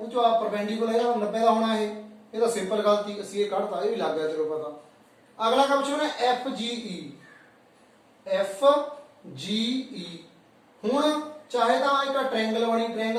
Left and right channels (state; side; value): identical; both; correlation 1.00